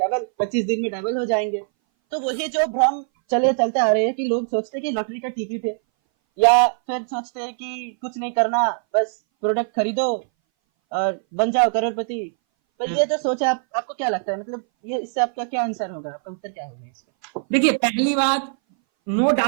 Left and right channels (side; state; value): left; silent; 60 dB below the other